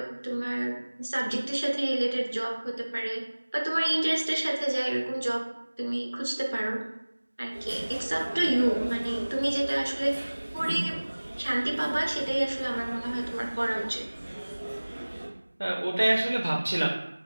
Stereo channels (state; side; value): inverted; both; correlation -1.00